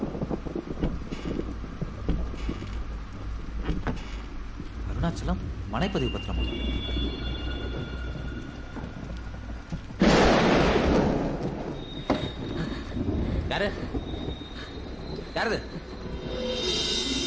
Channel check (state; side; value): identical; both; correlation 1.00